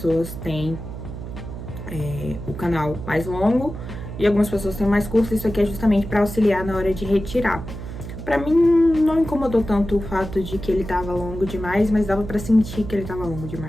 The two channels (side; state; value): right; noise; hum, 9 dB below the sound